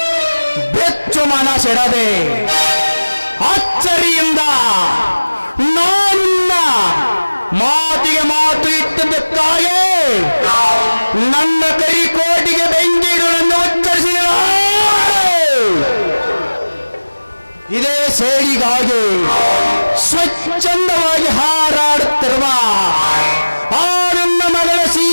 ಬೆಚ್ಚು ಮನಸೆಡದೆ ಅಚ್ಚರಿಯಿಂದ ನನ್ನ ಮಾತಿಗೆ ಮಾತು ಇಟ್ಟದಕ್ಕಾಗಿ ನನ್ನ ಕರಿಕೋಟಿಗೆ ಬೆಂಕಿಗಳನ್ನು ಉಚ್ಚರಿಸಿದ ಇದೇ ಸೇಡಿಗಾಗಿ ಸ್ವಚ್ಛಂದವಾಗಿ ಹಾರಾಡುತ್ತಿರುವ ಆ ನನ್ನ ಮಗಳ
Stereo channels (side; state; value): both; inverted; correlation -1.00